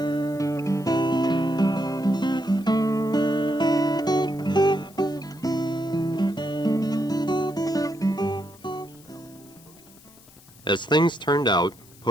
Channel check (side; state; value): left; noise; hiss, 25 dB below the sound